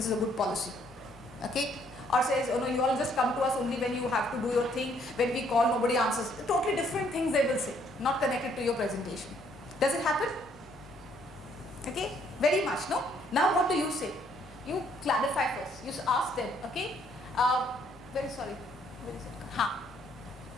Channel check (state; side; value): normal; both; correlation 0.66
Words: is a good policy. Okay. Or says, oh no, you all just come to us only when you have to do your thing. When we call, nobody answers. Totally different things they will say, not connected to your presentation. Does it happen? Okay, very much, no? Now what do you say? You clarify first. You ask them, okay? Very sorry. Where is it?